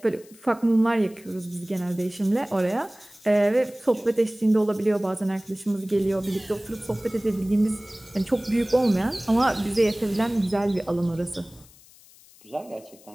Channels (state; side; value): noise; left; hiss, 25 dB below the sound